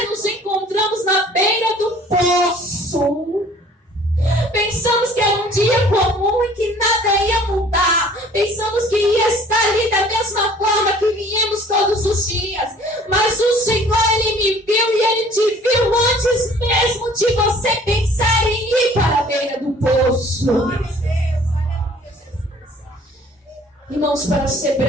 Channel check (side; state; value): both; normal; correlation 0.52